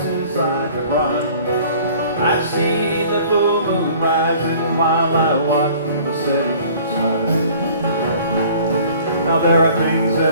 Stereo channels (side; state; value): both; inverted; correlation -0.51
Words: I could run. I see the full moon rising while I watch the setting sun. Now there are things that